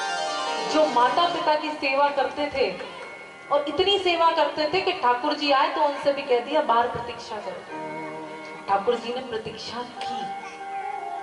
जो माता पिता की सेवा करते थे और इतनी सेवा करते थे कि ठाकुर जी आए तो उनसे भी कह दिया बाहर प्रतीक्षा करो। ठाकुर जी ने प्रतीक्षा की,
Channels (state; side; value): identical; both; correlation 1.00